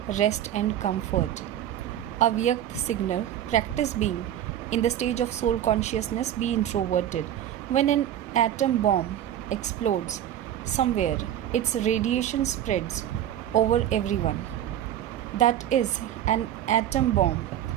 rest and comfort. Avyakt signal: practice being in the stage of soul consciousness, be introverted. When an atom bomb explodes somewhere, its radiation spreads over everyone. That is an atom bomb,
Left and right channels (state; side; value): quieter; left; 11.2 dB